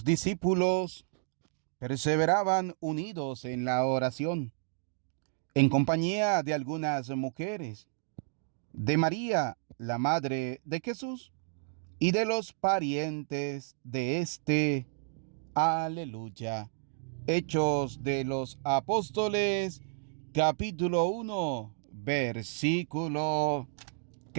discípulos perseveraban unidos en la oración, en compañía de algunas mujeres, de María, la madre de Jesús, y de los parientes de éste. Aleluya. Hechos de los Apóstoles, capítulo 1, versículo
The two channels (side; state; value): left; silent; digital silence